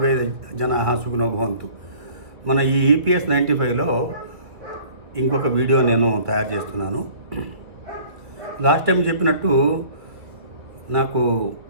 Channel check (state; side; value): late; left; 2.1 ms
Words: జనాః సుఖినో భవంతు. మన ఈ EPS 95లో ఇంకొక వీడియో నేను తయారు చేస్తున్నాను. లాస్ట్ టైం చెప్పినట్టు నాకు